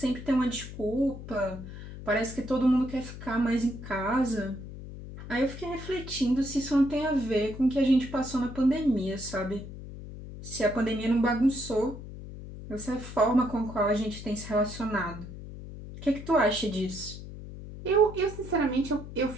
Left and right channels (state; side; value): noise; left; hum, 12 dB below the sound